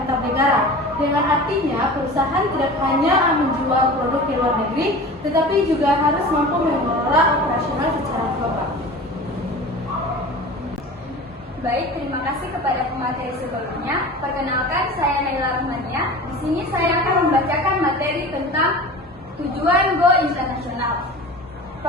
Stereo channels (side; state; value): both; normal; correlation 0.36